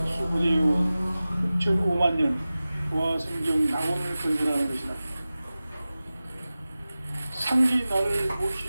수부대해온 6,500만 년 조화 성경 낙원을 건설하는 것이다. 상제인 나를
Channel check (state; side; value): inverted; both; correlation -0.96